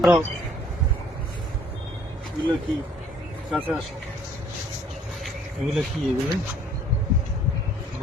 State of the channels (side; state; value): both; normal; correlation 0.58